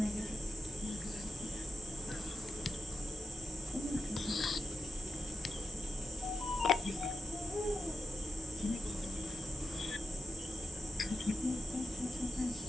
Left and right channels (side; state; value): both; normal; correlation 0.87